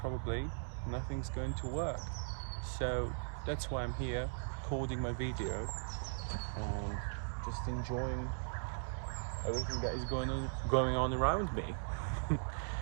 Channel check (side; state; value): left; silent; digital silence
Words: nothing's going to work. So that's why I'm here recording my video and just enjoying everything that is going on around me.